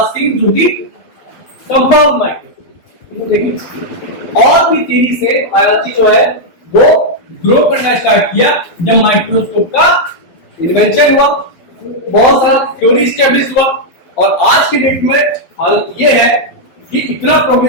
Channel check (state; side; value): late; right; 12 ms